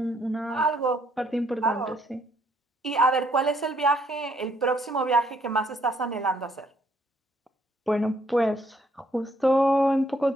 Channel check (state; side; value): normal; both; correlation 0.68